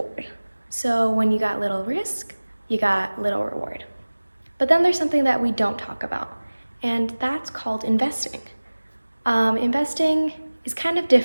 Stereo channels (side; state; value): both; inverted; correlation -1.00